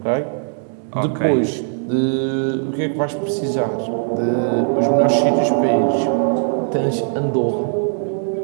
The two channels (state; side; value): silent; left; digital silence